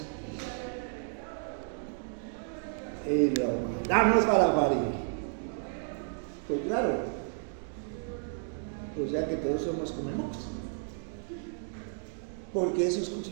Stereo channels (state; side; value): silent; left; digital silence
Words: y lo mandamos para la pared. Pues claro, o sea que todos somos comemocos, porque eso es